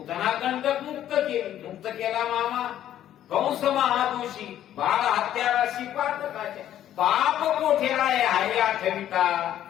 कंटक मुक्त केला मामा कंस महादोषी, बाळ हत्याराशी पातकाच्या, पाप कोठेला आहे आठविता.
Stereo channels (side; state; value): right; quieter; 11.6 dB